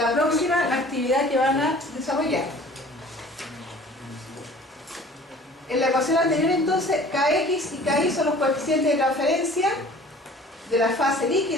próxima actividad que van a desarrollar. En la ecuación anterior, entonces, Kx y Ky son los coeficientes de transferencia de la fase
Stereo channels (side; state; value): both; normal; correlation 0.47